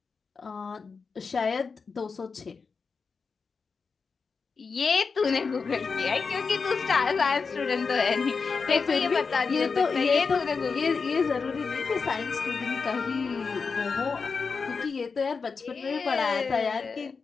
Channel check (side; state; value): right; quieter; 5.0 dB